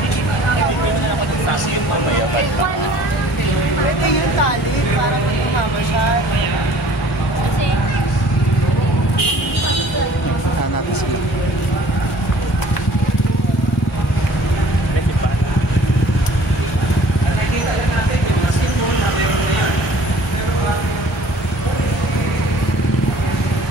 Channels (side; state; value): both; normal; correlation 0.51